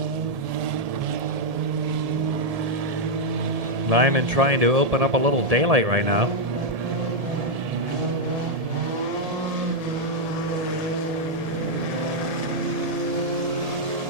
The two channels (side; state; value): left; late; 1.7 ms